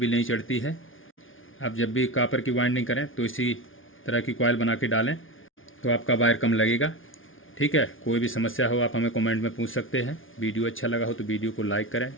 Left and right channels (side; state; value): right; late; 0.58 ms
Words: नहीं चढ़ती है। आप जब भी कॉपर की वाइंडिंग करें तो इसी तरह की कॉइल बना के डालें, तो आपका वायर कम लगेगा। ठीक है, कोई भी समस्या हो आप हमें कमेंट में पूछ सकते हैं। वीडियो अच्छा लगा हो तो वीडियो को लाइक करें।